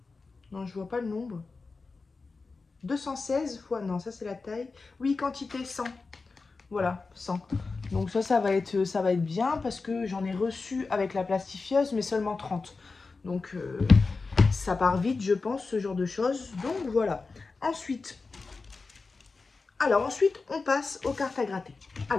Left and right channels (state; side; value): quieter; right; 4.1 dB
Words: Non, je vois pas le nombre. 216 fois, non, ça c'est la taille. Oui, quantité 100. Voilà, 100. Donc ça va être bien parce que j'en ai reçu avec la plastifieuse, mais seulement 30. Donc ça part vite, je pense, ce genre de choses. Donc voilà. Ensuite, on passe aux cartes à gratter.